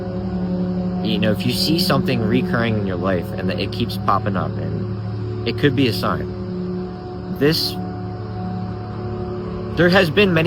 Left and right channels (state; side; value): identical; both; correlation 1.00